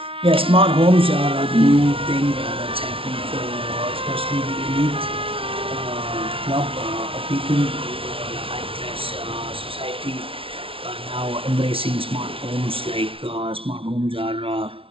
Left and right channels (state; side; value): late; left; 0.26 ms